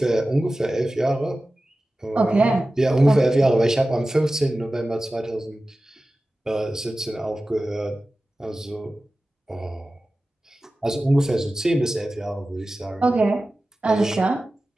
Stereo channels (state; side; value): normal; both; correlation 0.95